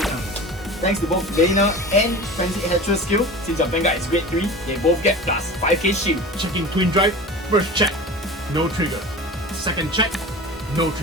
Thanks to both Laner and Frenzied Headrest skill, since your Vanguard is grade 3, they both get plus 5k shield. Checking Twin Drive, first check, no trigger. Second check, no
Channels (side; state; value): both; normal; correlation 0.34